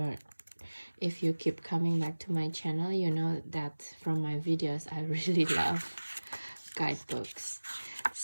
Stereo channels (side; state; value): both; inverted; correlation -1.00